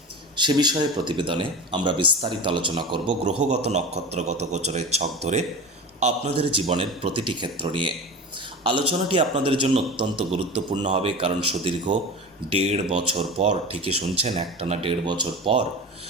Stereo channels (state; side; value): normal; both; correlation 0.30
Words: সে বিষয়ে প্রতিবেদনে আমরা বিস্তারিত আলোচনা করব গ্রহগত নক্ষত্রগত গোচরের ছক ধরে আপনাদের জীবনের প্রতিটি ক্ষেত্র নিয়ে। আলোচনাটি আপনাদের জন্য অত্যন্ত গুরুত্বপূর্ণ হবে, কারণ সুদীর্ঘ 1.5 বছর পর, ঠিকই শুনছেন, একটানা 1.5 বছর পর